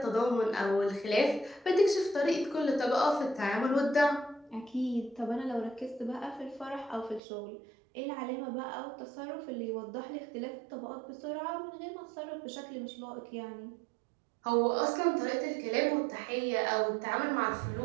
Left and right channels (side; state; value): left; drops out; at 7.2 s